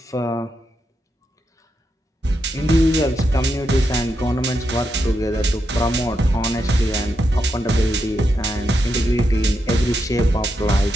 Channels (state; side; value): normal; both; correlation 0.84